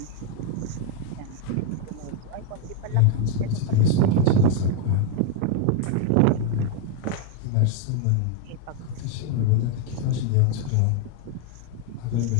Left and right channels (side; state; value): both; different; correlation 0.00